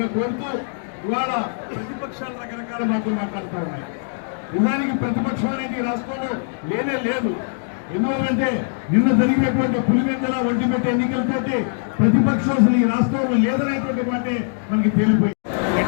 కోరుతూ ఇవాళ ప్రతిపక్షాలు రకరకాల మాటలు మాట్లాడుతూ ఉన్నాయి. నిజానికి ప్రతిపక్షం అనేది రాష్ట్రంలో లేనే లేదు. ఎందువల్లంటే నిన్న జరిగినటువంటి పులివెందుల ఒంటిమిట్ట ఎన్నికలతోటి ప్రతిపక్షం అసలు ఈ రాష్ట్రంలో లేదనేటువంటి మాటే మనకి తేలిపోయింది.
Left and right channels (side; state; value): right; silent; digital silence